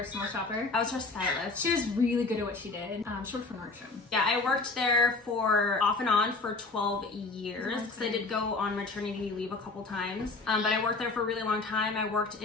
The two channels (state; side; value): quieter; right; 3.7 dB